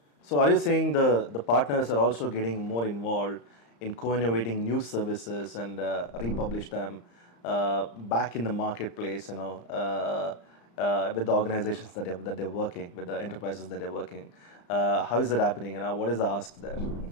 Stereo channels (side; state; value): right; late; 35 ms